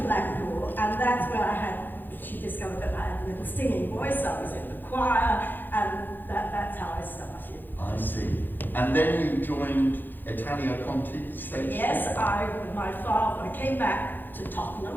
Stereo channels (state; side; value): late; right; 0.090 ms